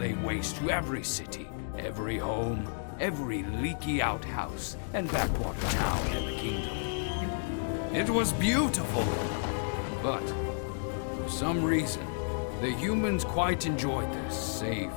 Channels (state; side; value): silent; right; digital silence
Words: waste to every city, every home, every leaky outhouse, and backwater town in the kingdom. It was beautiful, but for some reason, the humans quite enjoyed their safe,